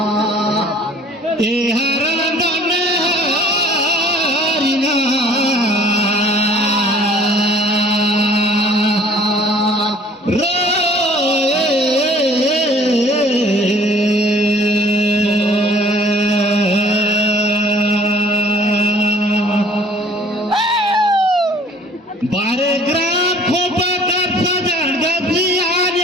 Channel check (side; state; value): both; normal; correlation 0.54